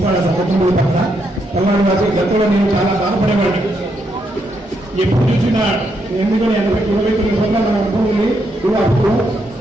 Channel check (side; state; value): both; normal; correlation 0.78